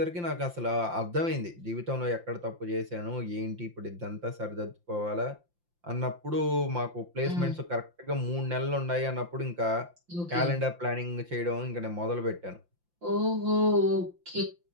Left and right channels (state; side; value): late; left; 5.8 ms